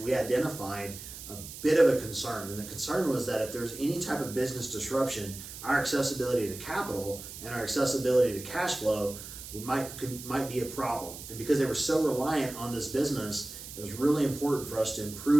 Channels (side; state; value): right; noise; hiss, 12 dB below the sound